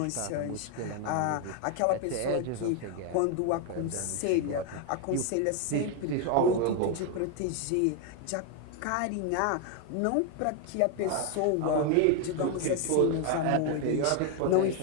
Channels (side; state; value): both; different; correlation 0.01